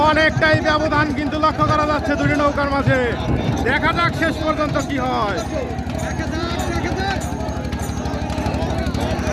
অনেকটাই ব্যবধান কিন্তু লক্ষ্য করা যাচ্ছে দুটি নৌকার মাঝে। দেখা যাক শেষ পর্যন্ত কি হয়।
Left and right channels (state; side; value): identical; both; correlation 1.00